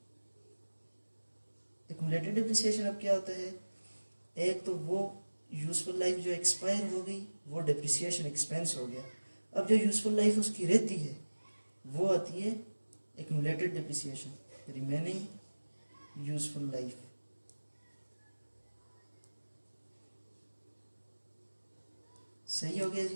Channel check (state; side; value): inverted; both; correlation -1.00